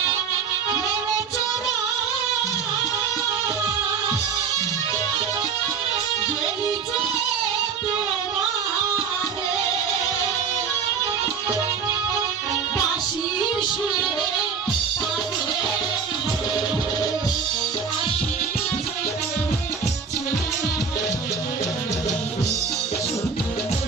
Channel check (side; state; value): left; quieter; 6.0 dB